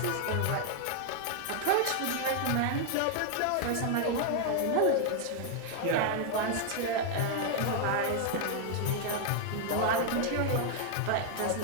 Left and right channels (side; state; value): both; different; correlation 0.00